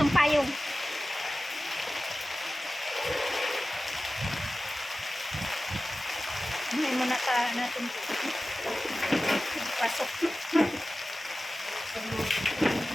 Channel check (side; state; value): both; normal; correlation 0.96